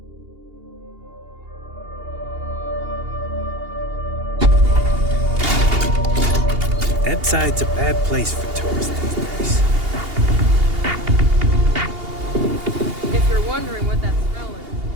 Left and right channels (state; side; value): late; left; 2.8 ms